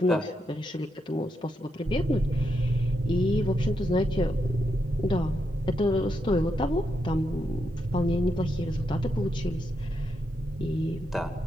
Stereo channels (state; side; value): normal; both; correlation 0.83